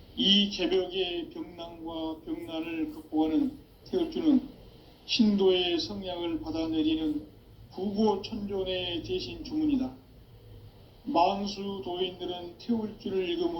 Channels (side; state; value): both; identical; correlation 1.00